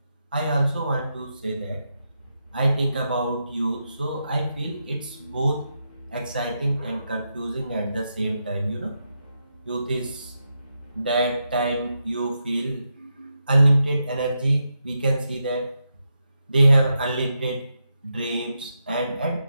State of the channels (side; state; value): both; inverted; correlation -0.85